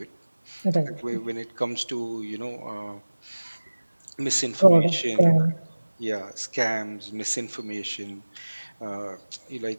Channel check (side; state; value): both; inverted; correlation -1.00